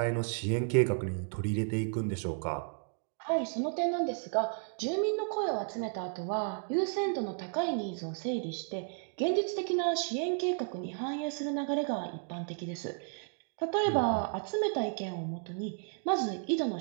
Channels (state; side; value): silent; left; 56 dB below the other